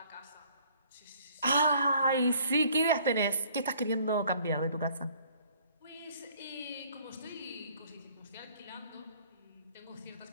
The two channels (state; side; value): inverted; both; correlation -0.58